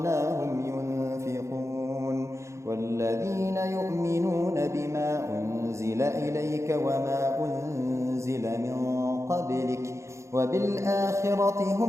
ينفقون والذين يؤمنون بما أنزل إليك وما أنزل من قبلك وبالآخرة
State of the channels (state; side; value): late; left; 0.14 ms